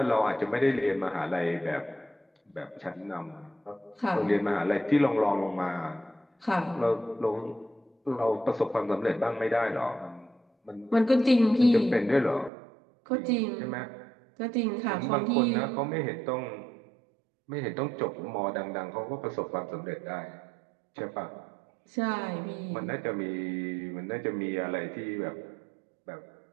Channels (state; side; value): drops out; left; at 12.5 s